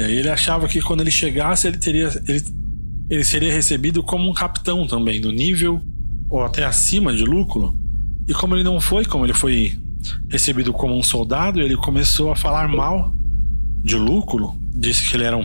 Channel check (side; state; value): both; inverted; correlation -1.00